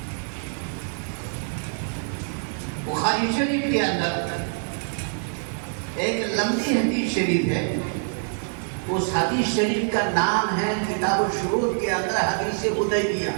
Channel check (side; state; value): left; silent; 62 dB below the other